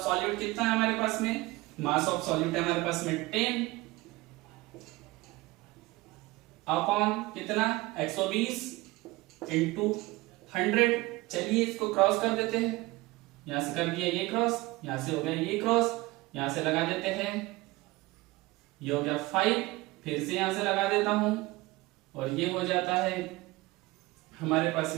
सॉल्यूट कितना है हमारे पास में, मास ऑफ सॉल्यूट है हमारे पास में 10 अपॉन कितना 120 इंटू 100। चलिए इसको क्रॉस कर देते हैं, यहां से कर दिया ये क्रॉस, यहां से हो गया ये क्रॉस, यहां से लगा देते हैं, ये हो गया 5, फिर से यहां से लगा देता हूं, और ये हो जाता है हमारे पास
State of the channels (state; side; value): quieter; left; 20.8 dB